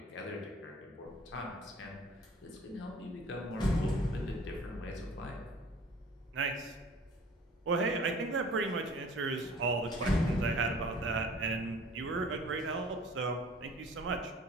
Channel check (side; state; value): both; normal; correlation 0.48